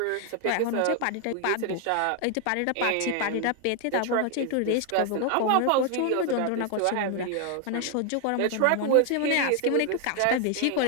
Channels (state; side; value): different; both; correlation 0.00